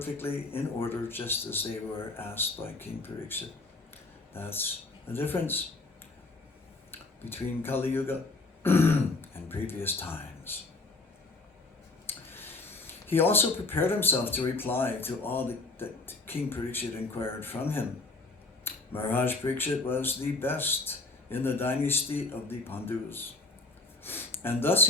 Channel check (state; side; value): quieter; right; 3.4 dB